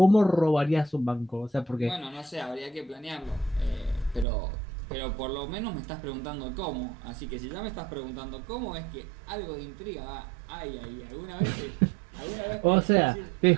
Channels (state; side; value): drops out; left; at 4.2 s